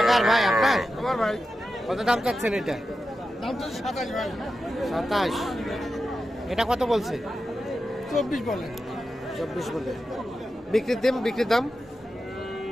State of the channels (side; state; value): both; normal; correlation 0.90